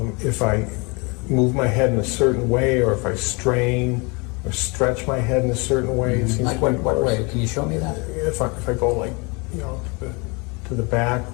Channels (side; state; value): right; quieter; 29.5 dB